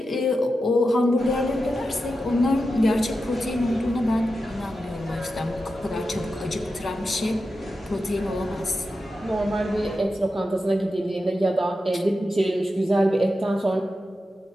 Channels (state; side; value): normal; both; correlation 0.90